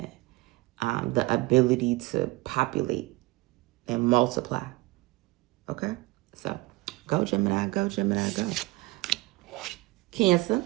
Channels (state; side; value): quieter; left; 21.1 dB